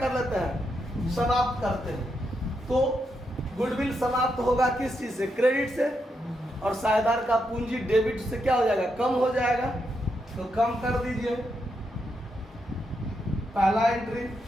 लेते हैं समाप्त करते हैं। तो गुडविल समाप्त होगा किस चीज से क्रेडिट से और साझेदार का पूंजी डेबिट से क्या हो जाएगा कम हो जाएगा। तो कम कर दीजिए। पहला entry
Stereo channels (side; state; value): both; normal; correlation 0.82